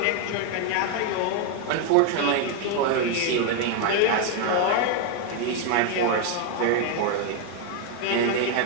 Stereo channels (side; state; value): both; different; correlation 0.01